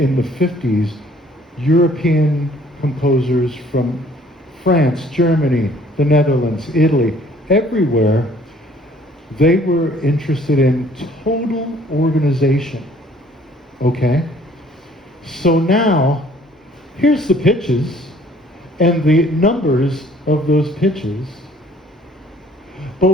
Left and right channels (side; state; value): both; normal; correlation 0.57